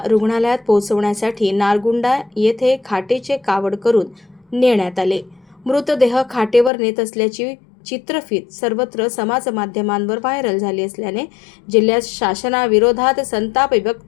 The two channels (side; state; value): right; drops out; at 6.7 s